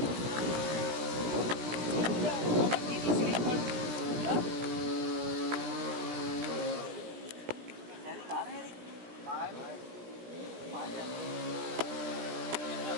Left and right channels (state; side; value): late; left; 16 ms